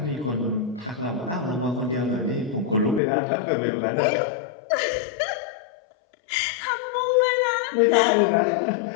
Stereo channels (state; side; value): drops out; right; at 3.0 s